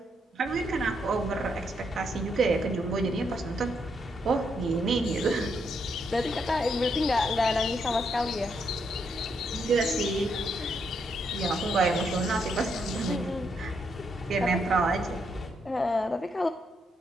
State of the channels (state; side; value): normal; both; correlation 0.77